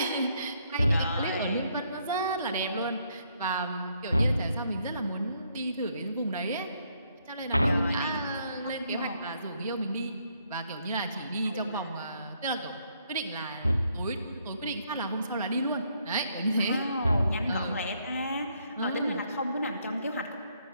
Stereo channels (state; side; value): inverted; both; correlation -0.72